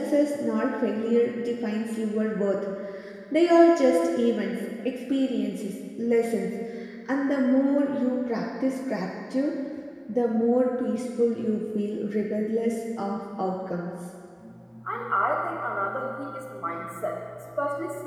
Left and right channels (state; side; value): identical; both; correlation 1.00